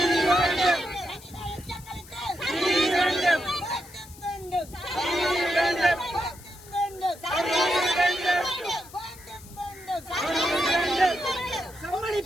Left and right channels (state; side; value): noise; left; hiss, 20 dB below the sound